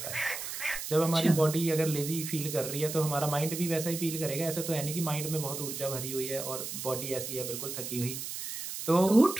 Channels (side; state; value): right; noise; hiss, 6 dB below the sound